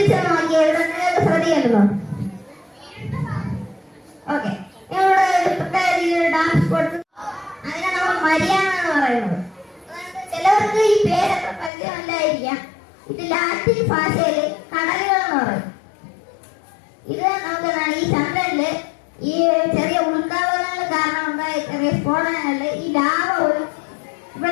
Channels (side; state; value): right; drops out; at 11.7 s